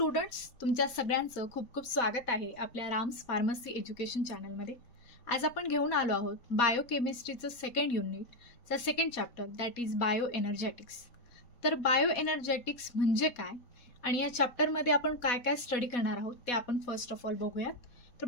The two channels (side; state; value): right; late; 4.2 ms